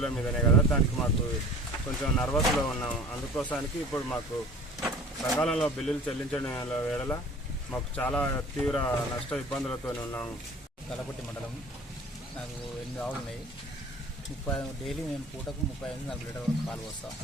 మీదనే కదా. దానికి మాకు కొంచెం నర్వస్లో ఉన్నాం. అందుకోసానికి ఇప్పుడు మాకు సకాలంలో బిల్లులు చెల్లించడం వేళ మాకు చాలా తీవ్ర నష్ట ఇబ్బందులతో ఉన్నాము. కలపట్టి మండలం. నాకు 8 ఆవులు ఉన్నాయి. డైలీ మేము పూటకు 35-40 లీటర్ వరకు పాలు పోస్తాం.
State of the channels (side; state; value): both; normal; correlation 0.45